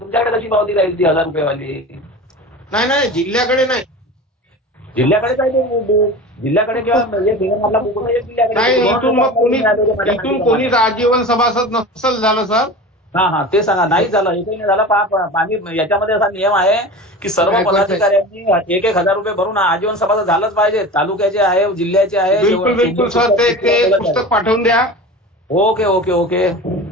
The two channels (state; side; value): normal; both; correlation 0.33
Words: तुमच्याकडे कशी पावती राहील ती 1000 रुपयेवाली? नाही जिल्ह्याकडे नाही. जिल्ह्याकडे काय ते जिल्ह्याकडे किंवा आपला बुक नाही. इथून कोणीच आजीवन सभासद नसेल झालं सर. हा, ते सांगा. नाही झालं, एकही नाही झालं. आम्ही याच्यामध्ये असा नियम आहे की सर्व पदाधिकाऱ्यांनी 1,000 रुपये भरून आजीवन सभासद झालंच पाहिजे. तालुक्याचे आहे, जिल्ह्याचे आहे. बिलकुल सर. ते पुस्तक पाठवून द्या. ओके.